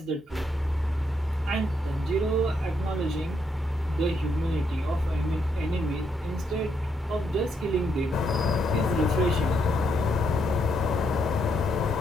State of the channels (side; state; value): both; normal; correlation 0.77